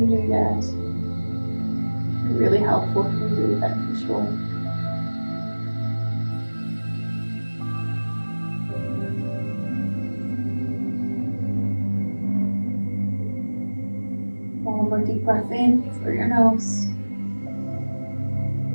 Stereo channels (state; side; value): inverted; both; correlation -1.00